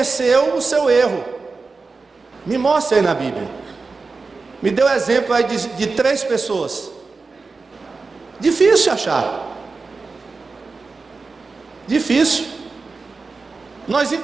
o seu erro. Me mostre aí na Bíblia. Me dê um exemplo aí de 3 pessoas. Difícil achar. Difícil. Nós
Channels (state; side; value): quieter; left; 4.2 dB